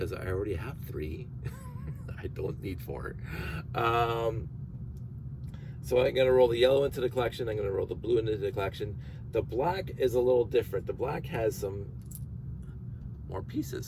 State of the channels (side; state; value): both; identical; correlation 1.00